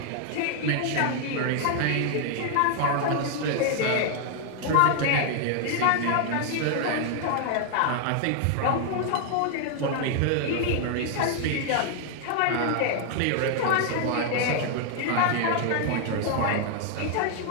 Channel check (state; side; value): different; both; correlation 0.00